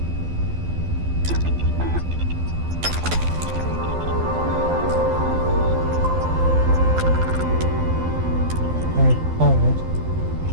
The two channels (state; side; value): late; left; 12 ms